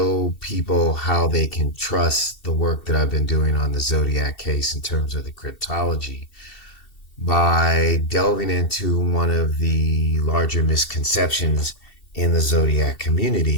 people how they can trust the work that I've been doing on the Zodiac case in terms of the cryptology by delving into one of the larger misconceptions in the Zodiac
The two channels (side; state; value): right; late; 2.7 ms